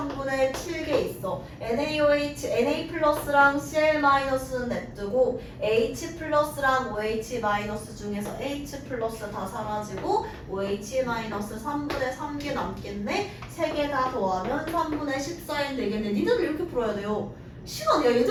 7개 있어. NaOH, Na 플러스랑 Cl 마이너스는 냅두고 H 플러스랑 OH 마이너스 중에서 H 플러스 다 사라지고 OH 마이너스 3분의 3개 남겠네. 3개 다 더하면 3분의 14인 되겠네. 니들 이렇게 풀어야 돼요. 시간, 야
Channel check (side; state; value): both; identical; correlation 1.00